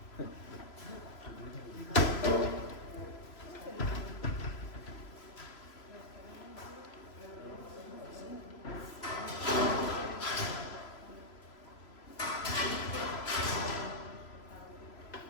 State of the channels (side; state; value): right; late; 3.0 ms